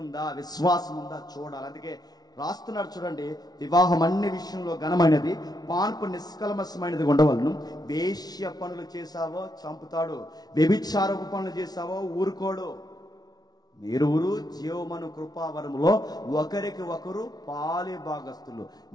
ఉందా, విశ్వాసం ఉందా చూడాలి. అందుకే రాస్తున్నాడు చూడండి, వివాహం అన్ని విషయంలో ఘనమైనది, పాన్పు నిష్కల్మషమైనది ఉండవలను. వేశ్య పనులు చేశావో చంపుతాడు, వ్యభిచారపు పనులు చేశావో ఊరుకోడు. మీరువురు జీవమను కృపావరములో ఒకరికి ఒకరు పాలి భాగస్తులు.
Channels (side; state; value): right; late; 0.19 ms